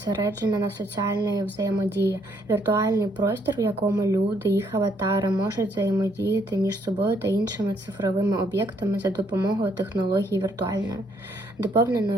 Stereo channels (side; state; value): both; normal; correlation 0.69